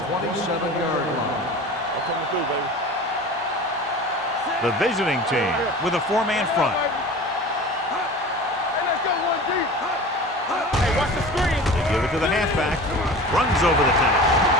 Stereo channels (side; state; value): both; normal; correlation 0.37